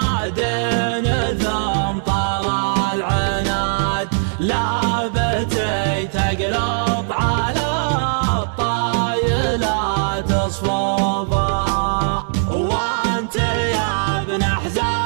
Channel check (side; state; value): left; silent; digital silence